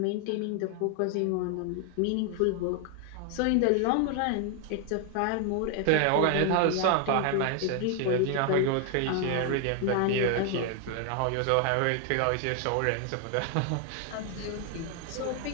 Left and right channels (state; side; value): different; both; correlation 0.00